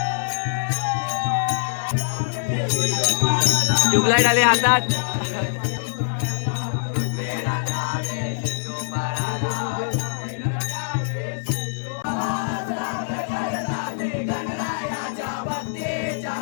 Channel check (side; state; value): right; silent; digital silence